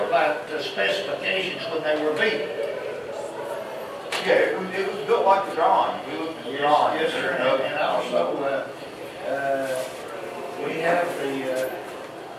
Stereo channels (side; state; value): both; identical; correlation 1.00